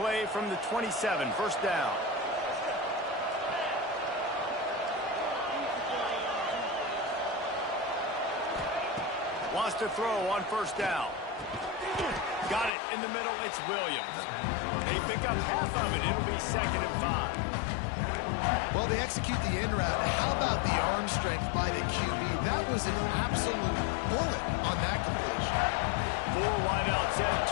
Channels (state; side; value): drops out; right; at 12.7 s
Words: from the 27, first down. Wants to throw on first down. Got it in the middle. It's Williams. They pick up half of it. It'll be 2nd and 5. Well, they execute the in route. How about the arm strength by the QB? That was an absolute bullet on that completion. 4 wideout set,